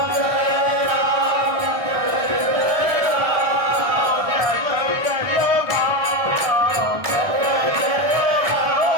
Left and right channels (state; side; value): late; left; 1.7 ms